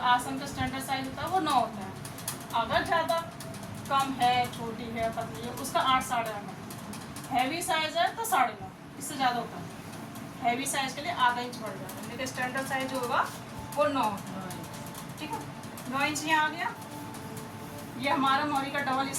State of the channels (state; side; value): identical; both; correlation 1.00